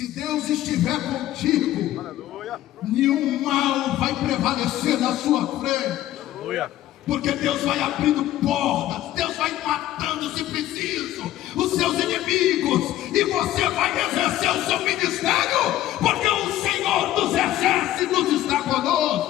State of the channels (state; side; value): quieter; right; 13.9 dB